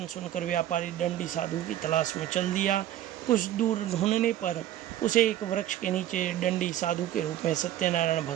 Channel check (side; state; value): left; quieter; 12.5 dB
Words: सुनकर व्यापारी दंडी साधु की तलाश में चल दिया। कुछ दूर ढूंढने पर उसे एक वृक्ष के नीचे दंडी साधु के रूप में सत्यनारायण